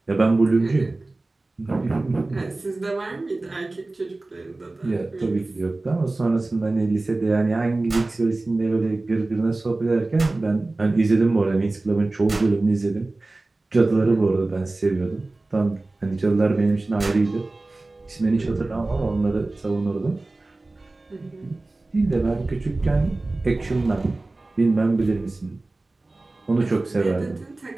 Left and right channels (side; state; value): left; quieter; 3.1 dB